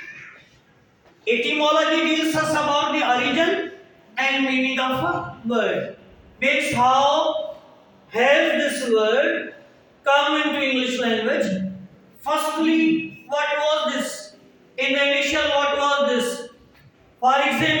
Etymology deals us about the origin and meaning of a word. Means how has this word come into English language? Firstly, what was this? In the initial, what was this? For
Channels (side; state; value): both; identical; correlation 1.00